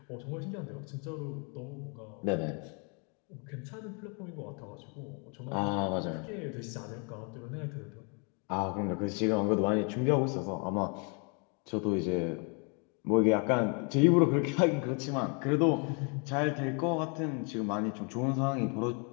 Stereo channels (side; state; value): right; quieter; 35.9 dB